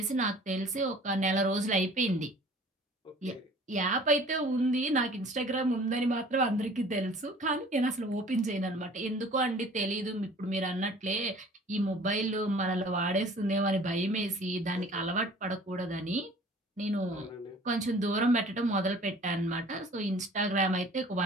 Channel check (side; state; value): both; normal; correlation 0.49